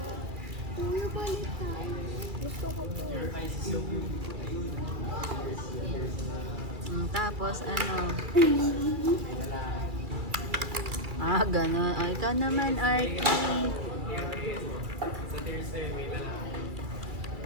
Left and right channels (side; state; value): left; late; 2.3 ms